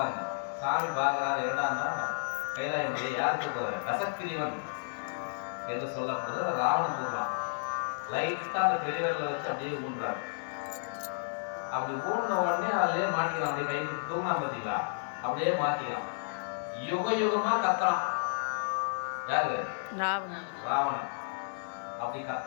சாமி பார்க்கிறாரு, என்னடான்னா கைலாய மலையை யார் தூக்குறாரு? கசக்கிரிவன் என்று சொல்லப்படுறது ராவணன் தூக்கலாம். லைட்டா அந்த பெரியவர்களை வச்சு அப்படியே ஊன்றாரு. அப்படி ஊன்ற உடனே அதுலயே மாட்டிக்கலாம். அப்படியே கை தூங்கினா பார்த்தீங்களா, அப்படியே மாட்டிக்கலாம். யுக யுகமா கத்துறான். யாரு? ராவணன். அப்படி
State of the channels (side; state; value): right; silent; digital silence